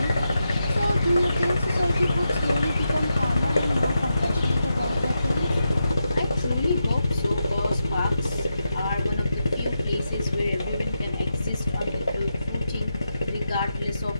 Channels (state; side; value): inverted; both; correlation -0.86